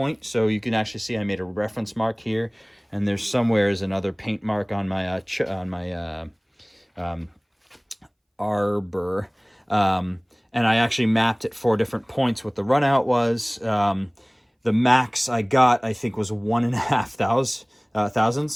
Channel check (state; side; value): identical; both; correlation 1.00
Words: so you can actually see I made a reference mark here, and there's somewhere is another paint mark on my arbor, and I actually mapped at 4 different points what the run out was. The max I got, I think, was 1.5